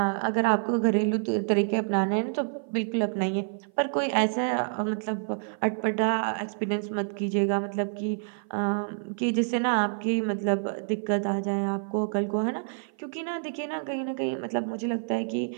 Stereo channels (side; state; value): left; silent; 55 dB below the other